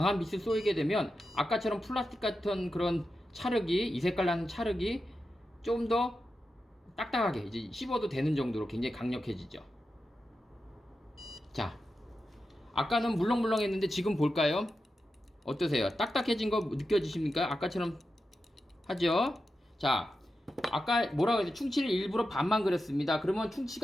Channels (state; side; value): normal; both; correlation 0.90